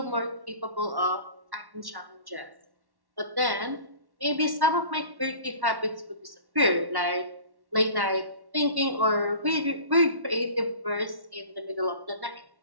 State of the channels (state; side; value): late; left; 1.1 ms